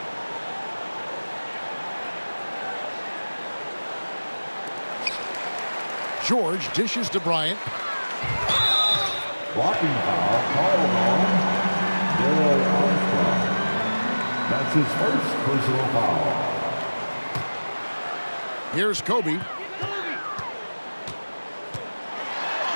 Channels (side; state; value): both; inverted; correlation -1.00